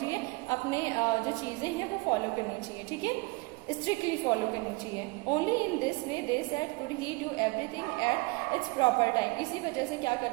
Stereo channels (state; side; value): quieter; left; 26.0 dB